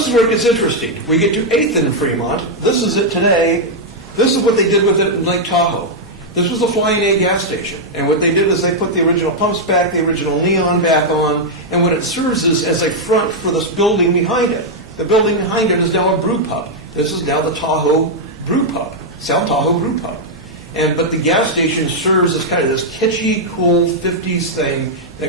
is where it gets interesting. We get to 8th and Fremont. This is it today. This is what they did with it in Lake Tahoe. This was a Flying A gas station. And what they did is they put the original pumps back, the original neon back on, and what it serves is as a front for this building behind it. The building behind it is now a brew pub. This is now the Tahoe Brew Pub, South Tahoe Brew Pub. But the gas station serves as kind of this kitschy, cool 50s thing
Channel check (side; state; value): both; normal; correlation -0.03